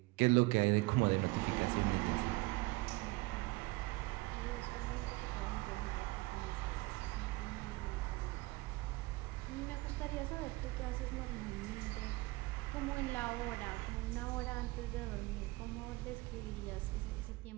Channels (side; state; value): left; quieter; 22.2 dB